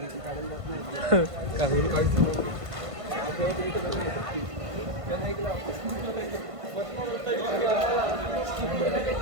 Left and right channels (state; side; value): late; left; 1.5 ms